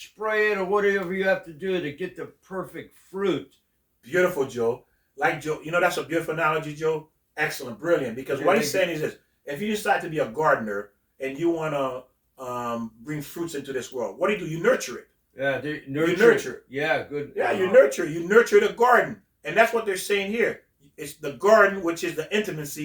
it or whatever you have to do to get the perfect fruit. Beautiful, Joe. Like Joe, that's a beautiful analogy, Joe. Excellent, brilliant. Because what he's saying is this: if you decide to be a gardener and you want to bring fruits into this world, what do? You nurture it. Yeah, you nurture it. Yeah, good. Yeah, you nurture the garden, and that's what they're saying here. It's the garden, which is the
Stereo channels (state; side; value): identical; both; correlation 1.00